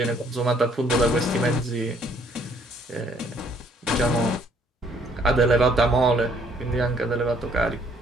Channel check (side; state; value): both; normal; correlation 0.63